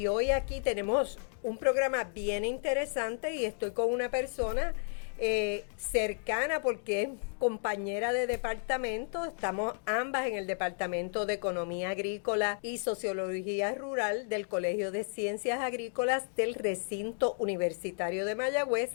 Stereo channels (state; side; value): silent; right; 56 dB below the other